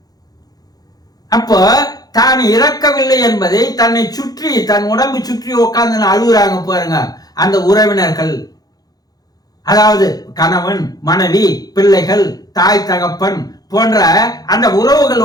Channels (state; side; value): late; right; 0.19 ms